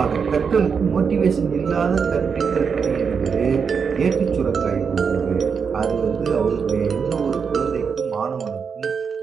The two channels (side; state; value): left; quieter; 6.1 dB